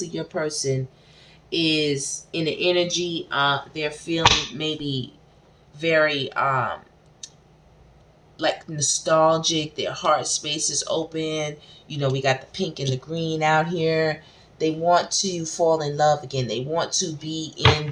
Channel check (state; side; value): identical; both; correlation 1.00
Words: your person is in the energy. They're feeling maybe very like nostalgic. Their heart space is open. You know, we got the pink and the green out here. They want to fall in love again. They want to be in